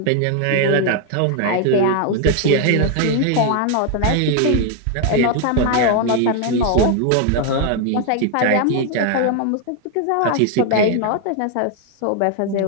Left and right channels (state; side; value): different; both; correlation 0.01